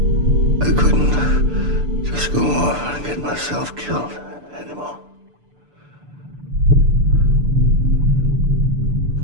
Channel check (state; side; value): late; left; 6.8 ms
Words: I couldn't just go off and get myself killed anymore.